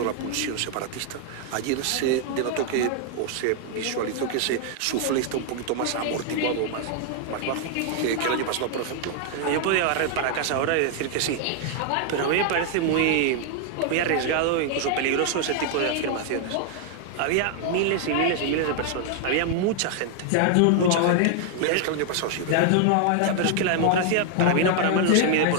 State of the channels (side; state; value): both; different; correlation 0.00